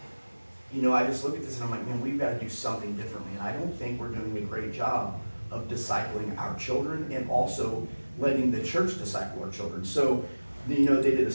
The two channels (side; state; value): both; inverted; correlation -1.00